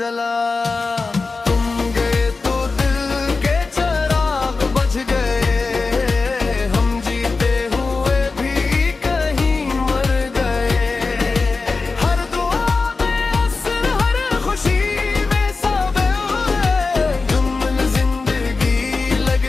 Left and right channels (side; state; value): right; quieter; 4.1 dB